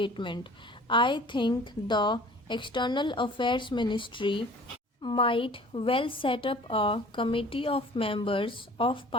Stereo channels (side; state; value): both; normal; correlation 0.47